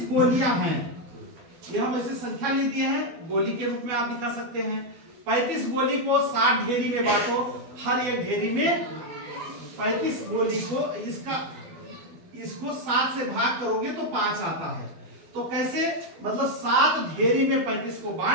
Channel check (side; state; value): left; late; 12 ms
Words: गोलियां हैं, ये हम ऐसे संख्या ले दिए हैं, गोली के रूप में आप दिखा सकते हैं। 35 गोली को 60 ढेरी में बांटो, हर एक ढेरी में 35 गोली को इसको 7 से भाग करोगे तो 5 आता है। तो कैसे, मतलब 7 ढेरी में 35 को